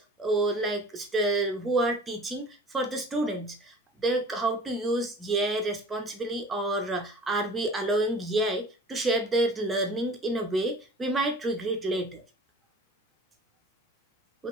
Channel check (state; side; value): normal; both; correlation 0.43